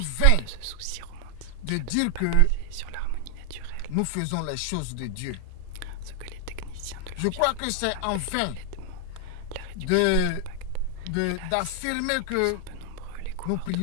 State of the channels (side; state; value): both; different; correlation 0.00